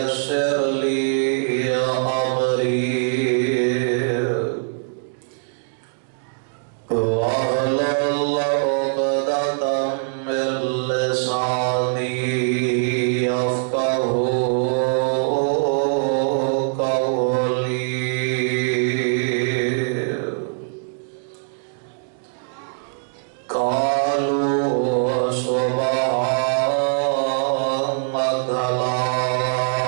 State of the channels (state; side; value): silent; left; digital silence